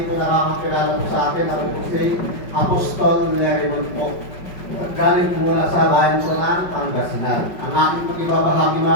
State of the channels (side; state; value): right; late; 5.3 ms